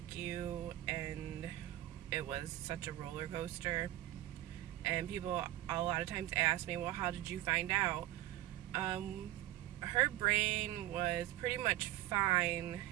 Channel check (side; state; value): left; quieter; 15.1 dB